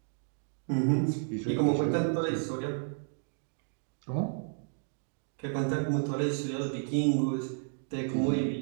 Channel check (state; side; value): silent; left; digital silence